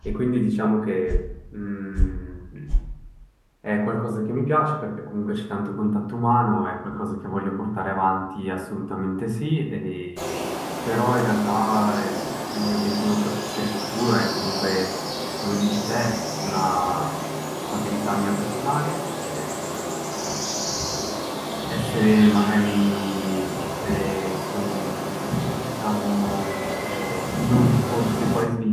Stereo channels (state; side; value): identical; both; correlation 1.00